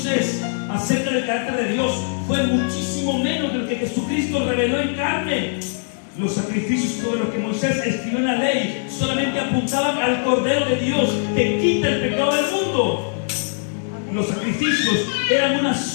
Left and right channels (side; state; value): right; silent; digital silence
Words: acerca del carácter de Dios fue muchísimo menos de lo que Jesucristo reveló en carne. Los sacrificios sobre los que Moisés escribió en la ley solamente apuntaban al Cordero de Dios que quita el pecado del mundo. Los sacrificios eran una